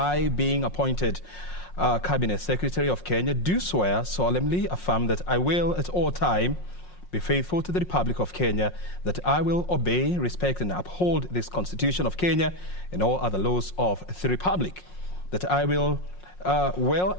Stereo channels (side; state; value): right; late; 5.5 ms